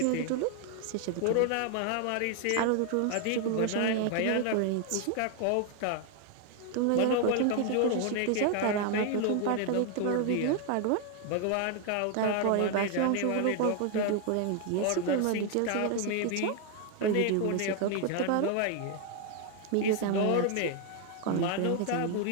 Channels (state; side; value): different; both; correlation 0.00